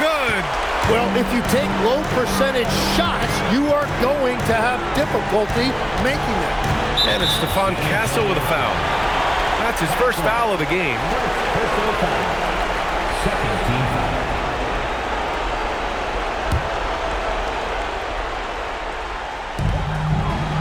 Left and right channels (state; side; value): identical; both; correlation 1.00